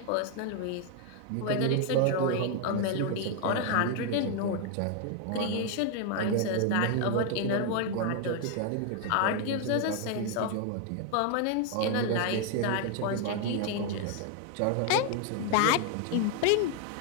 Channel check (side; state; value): both; different; correlation 0.01